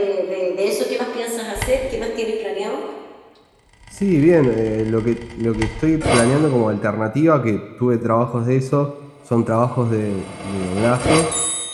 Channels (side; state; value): both; identical; correlation 1.00